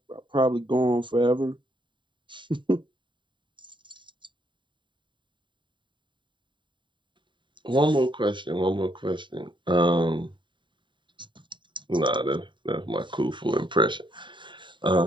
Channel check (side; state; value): left; late; 0.23 ms